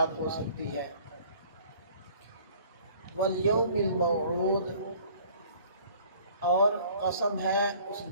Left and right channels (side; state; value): both; inverted; correlation -0.53